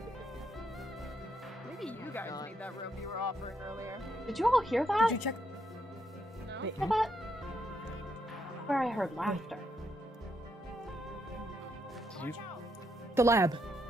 Maybe you guys need that room you were offering earlier. Did you all hear that? Did you check? No? Hear that? Where I heard laughter. The lab.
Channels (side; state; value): both; normal; correlation 0.78